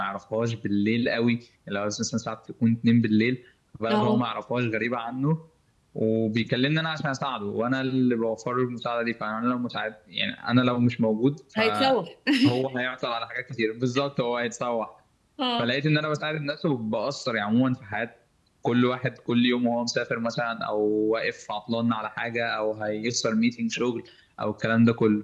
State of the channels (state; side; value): identical; both; correlation 1.00